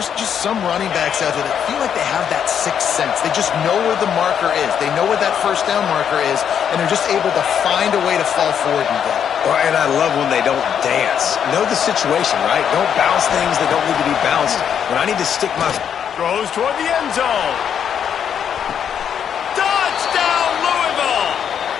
just some running backs out there that feel like they have that sixth sense. They just know where the marker is. They know where that first down marker is, and they're just able to find a way to fall forward and get it. Well, and I love when they don't dance. Know the situation, right? Don't bounce things that don't need to be bounced. When I need to stick my... Throws toward the end zone.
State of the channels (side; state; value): right; quieter; 8.3 dB